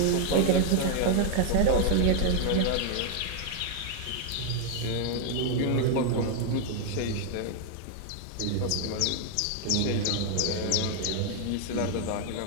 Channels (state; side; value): different; both; correlation 0.01